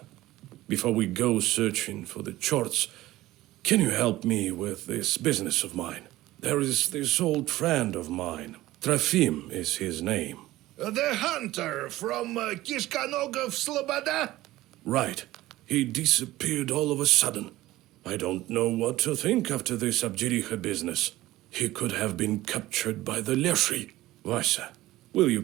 Before we go searching for the charts, can you help me with this business of mine? There is this old friend of mine. Trofim is his name. The hunter from Kishkanogov Sloboda? Right. He disappeared all of a sudden. I don't know what to think after this Abjiricha business. He could have been captured by the Leshi. Vasia, will you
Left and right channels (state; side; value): quieter; left; 16.7 dB